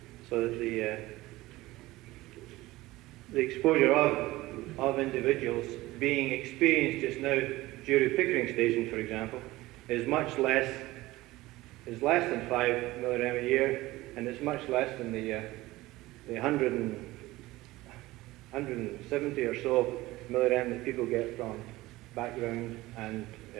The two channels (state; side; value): quieter; left; 18.6 dB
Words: So that the exposure of individuals being experienced just now due to Pickering Station, for example, is less than 5 millirem a year, and it's much less than the 170 or so millirem that people get from background and